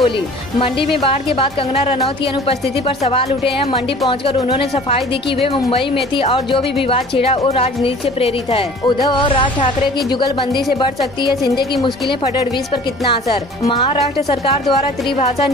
मंडी में बाढ़ के बाद कंगना रनौत की अनुपस्थिति पर सवाल उठे हैं। मंडी पहुंचकर उन्होंने सफाई दी कि वे मुंबई में थी और जो भी विवाद छिड़ा वो राजनीति से प्रेरित है। उद्धव और राज ठाकरे की जुगलबंदी से बढ़ सकती है शिंदे की मुश्किलें, फडणवीस पर कितना असर। महाराष्ट्र सरकार द्वारा त्रिभाषा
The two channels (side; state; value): both; normal; correlation 0.47